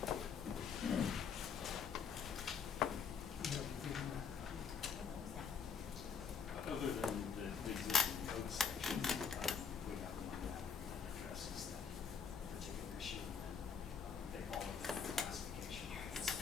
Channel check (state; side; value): quieter; right; 6.4 dB